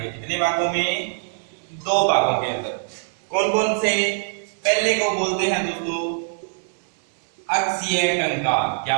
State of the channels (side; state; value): left; silent; 60 dB below the other